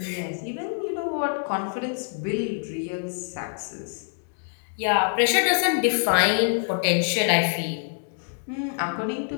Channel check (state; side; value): silent; right; digital silence